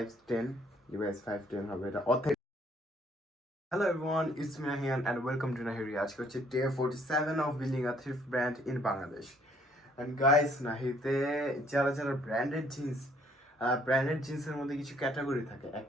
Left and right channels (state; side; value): normal; both; correlation 0.64